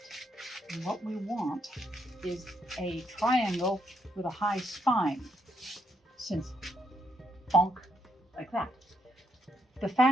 And what we want is a triangle with a high spine, since bonk, like that. The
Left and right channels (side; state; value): both; normal; correlation 0.76